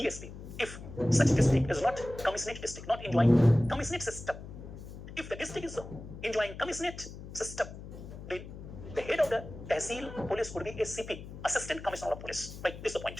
If such district is not commissionate district, not enjoying commissionate system, if the district is enjoying commissionate system, then the head of the tehsil police would be a CP, Assistant Commissioner of Police. Right, this is the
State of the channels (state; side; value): noise; left; hum, 12 dB below the sound